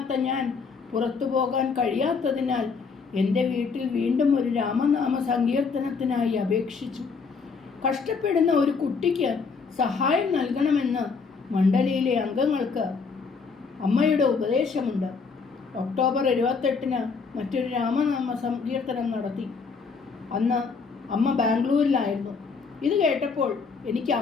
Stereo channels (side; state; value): right; quieter; 5.1 dB